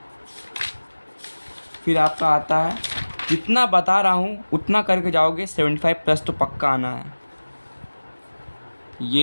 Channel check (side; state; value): both; inverted; correlation -1.00